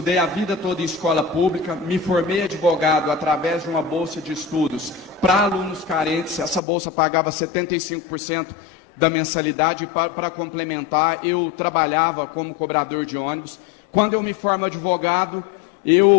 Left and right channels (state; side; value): drops out; right; at 6.6 s